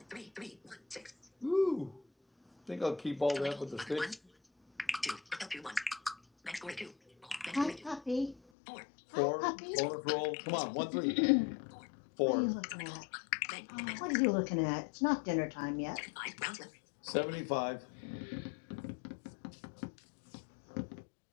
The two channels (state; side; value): drops out; right; at 8.4 s